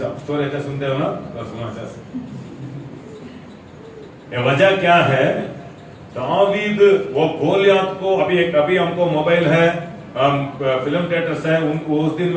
स्टोरी अच्छा सुनते हो ना, तो सुनो अच्छा से। ये वजह क्या है, दावीद वो गोलियत को, अभी हमको मोबाइल है, फिल्म थिएटर्स है, उनको उस दिन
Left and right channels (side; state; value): both; identical; correlation 1.00